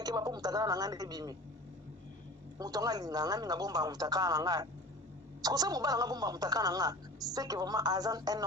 po mutakana na ngande bimi. Mutonga linga ngami ngabomba mutakana na ngate. Ce que mobala ngabomba mutakana na ngate, c'est que vraiment Azan un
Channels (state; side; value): normal; both; correlation 0.38